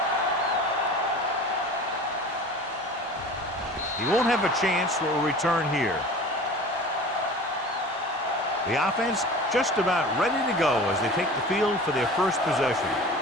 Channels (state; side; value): normal; both; correlation 0.39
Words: He won't have a chance for a return here. The offense just about ready to go as they take the field for their first possession.